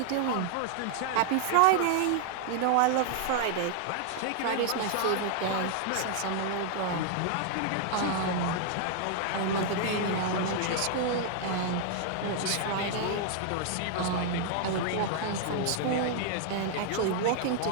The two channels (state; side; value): different; both; correlation 0.00